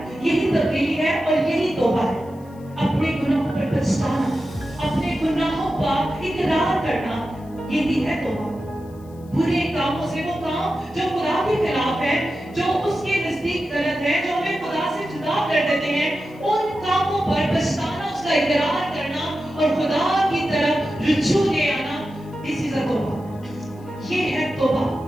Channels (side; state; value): left; noise; hiss, 30 dB below the sound